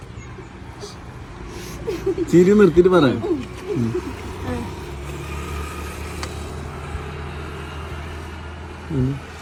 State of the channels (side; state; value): both; identical; correlation 1.00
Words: ചിരി നിർത്തിട്ട് പറ.